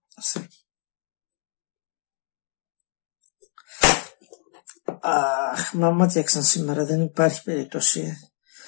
Αχ, μα μάτιαξαν σήμερα, δεν υπάρχει περίπτωση.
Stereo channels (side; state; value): right; silent; digital silence